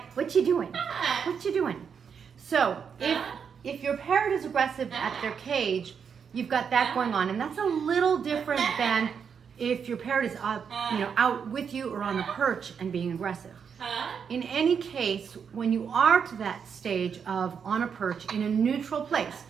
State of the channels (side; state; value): left; quieter; 6.8 dB